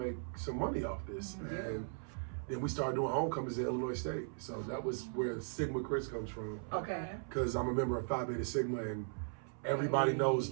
some money off this. Yeah. And then we started doing homecomings at Illinois State. So that was where Sigma Chris comes from. Okay. Because I'm a member of Phi Beta Sigma, and everybody knows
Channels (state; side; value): silent; left; 52 dB below the other